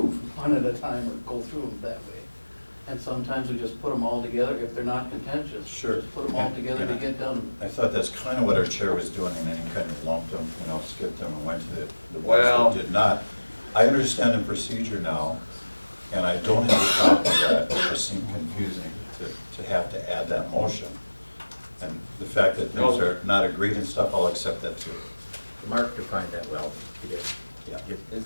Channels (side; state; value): both; inverted; correlation -1.00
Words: one at a time or go through them that way. And sometimes we just put them all together if they're not contentious. Sure. Just put them all together to get done. I thought that's kind of what our chair was doing, and then he kind of lumped them, skipped them and went to the ones Well- that did not. I understand the procedure now, and I don't have a problem with that. It just seemed confusing to have to add that motion. And the fact that things No. are not agreed and stuff, I'll accept that too. Mark defined that well, he did.